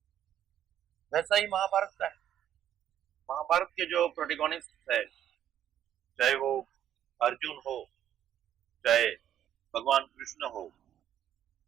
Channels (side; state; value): left; quieter; 10.6 dB